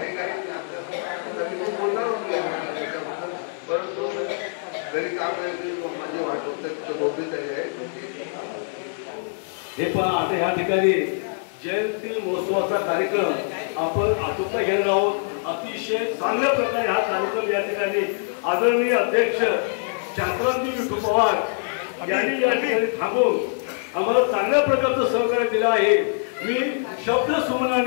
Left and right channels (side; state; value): right; silent; 58 dB below the other